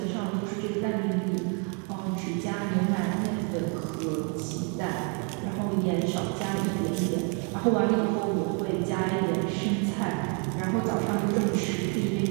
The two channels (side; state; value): left; quieter; 36.6 dB